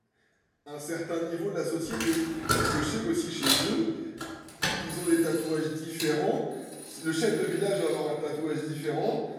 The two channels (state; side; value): identical; both; correlation 1.00